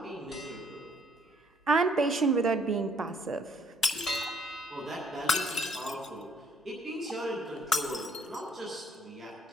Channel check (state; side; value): normal; both; correlation 0.65